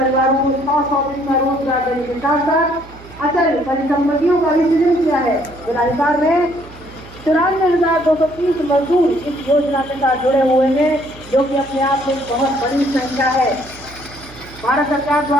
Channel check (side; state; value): right; noise; hum, 20 dB below the sound